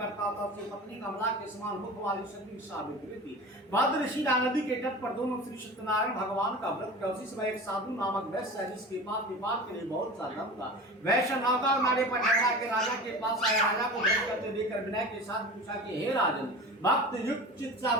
था। उसकी पत्नी कमला के समान मुख वाली शक्ति सावित्री थी। भद्रशिला नदी के तट पर दोनों श्री सत्यनारायण भगवान का व्रत किया। उसी समय एक साधु नामक वैश्य है, जिसके पास व्यापार के लिए बहुत सा धन था। वैश्य नौका मारे पर ठहरा के राजा के पास आया। राजा को व्रत करते देखकर विनय के साथ पूछा कि हे राजन, भक्त युक्त चित्त से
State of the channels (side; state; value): both; normal; correlation 0.34